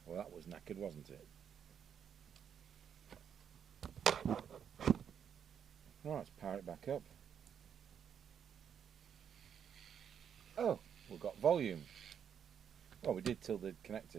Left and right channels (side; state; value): left; quieter; 8.1 dB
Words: Well, that was knackered, wasn't it? Right, let's power it back up. Oh, we've got volume. Well, we did till the